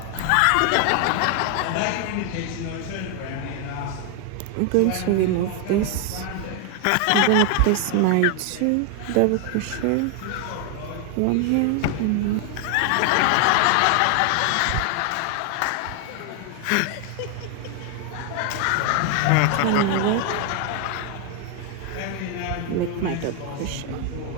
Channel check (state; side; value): different; both; correlation 0.00